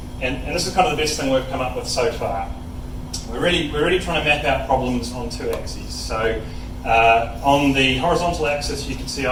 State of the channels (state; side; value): identical; both; correlation 1.00